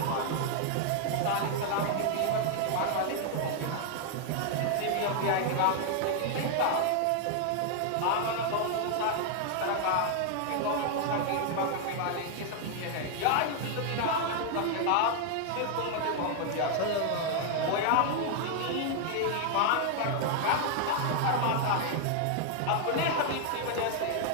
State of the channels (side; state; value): both; different; correlation 0.00